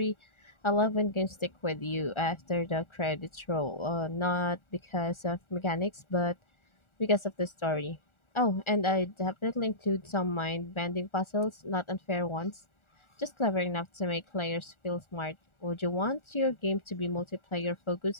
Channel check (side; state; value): right; late; 1.4 ms